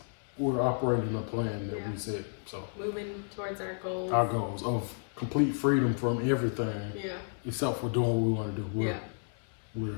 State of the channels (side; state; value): right; silent; 56 dB below the other